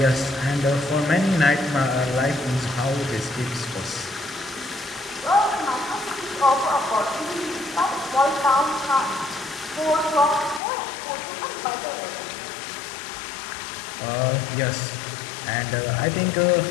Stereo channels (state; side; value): drops out; right; at 10.6 s